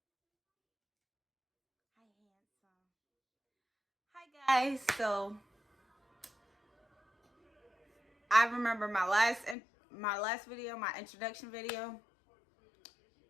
guys, so I remember my last video, my introduction video.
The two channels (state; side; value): drops out; right; at 9.6 s